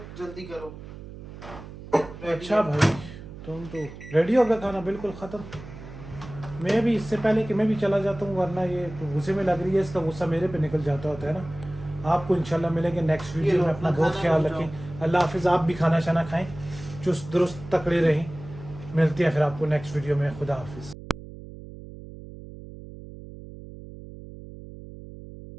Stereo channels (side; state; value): right; noise; hum, 14 dB below the sound